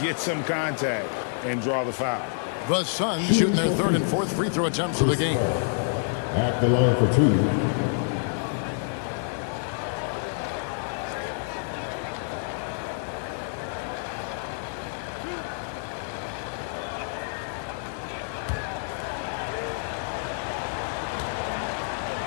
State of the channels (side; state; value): right; silent; 60 dB below the other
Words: some contact and draw the foul. The Suns shooting their 3rd and 4th free throw attempts of the game. At the line for 2.